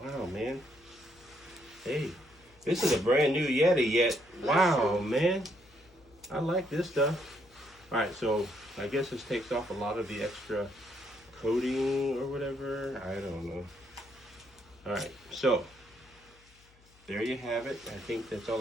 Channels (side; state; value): left; noise; hum, 28 dB below the sound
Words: Wow, man. Hey, this is a brand new Yeti yet. Wow, man. I like this stuff. All right, so I guess this takes off a lot of the extra coating or whatever. I don't know. All right, so there you have it. I think that's all